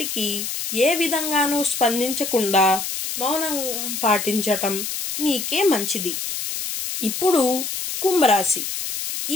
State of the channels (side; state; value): left; noise; hiss, 4 dB below the sound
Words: ఏ విధంగానూ స్పందించకుండా మౌనం పాటించటం మీకే మంచిది. ఇప్పుడు కుంభరాశి.